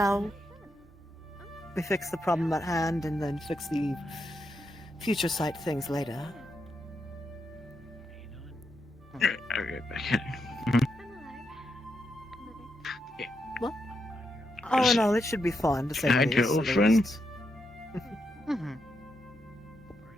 we fix the problem at hand and then fix the future sight things later. What? Oh no, it should be fun to say the least. girlfriend?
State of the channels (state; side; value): normal; both; correlation 0.83